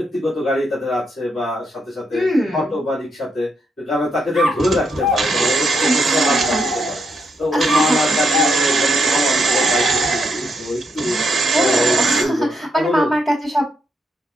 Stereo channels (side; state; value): both; normal; correlation 0.79